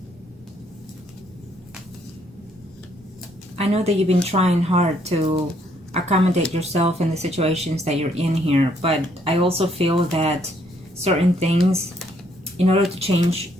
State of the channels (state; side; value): normal; both; correlation 0.69